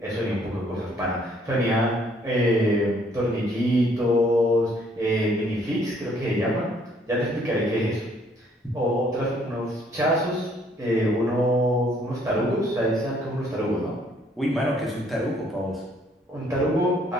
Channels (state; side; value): normal; both; correlation 0.64